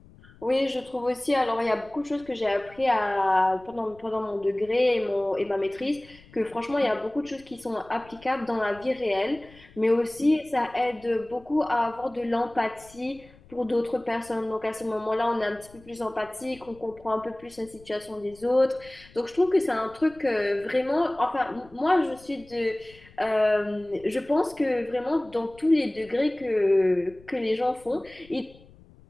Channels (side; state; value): left; noise; rumble, 25 dB below the sound